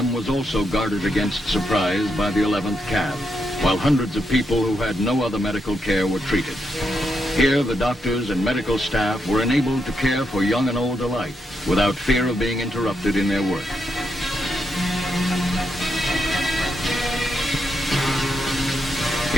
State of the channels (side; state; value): both; normal; correlation 0.82